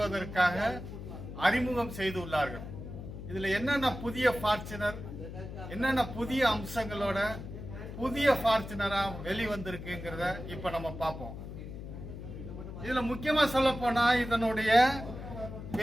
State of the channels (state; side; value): noise; left; hum, 10 dB below the sound